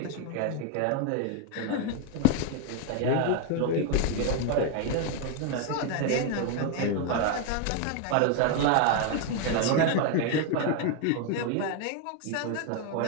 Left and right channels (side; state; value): both; different; correlation 0.01